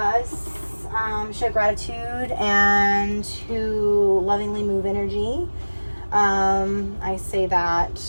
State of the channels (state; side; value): inverted; both; correlation -1.00